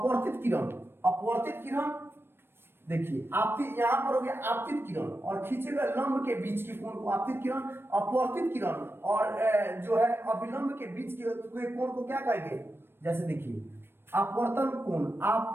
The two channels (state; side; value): late; left; 0.11 ms